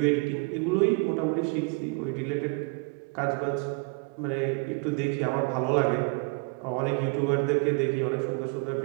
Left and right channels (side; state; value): left; quieter; 30.3 dB